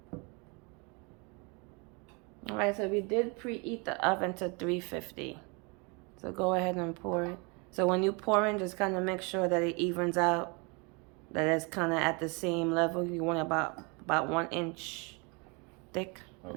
All right, so we did preheat the oven to 350. So go ahead and pour it. So when you pour in, just kind of make sure that it evens out, that it's kind of at the same level. You want about 1 inch thick.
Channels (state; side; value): quieter; left; 31.1 dB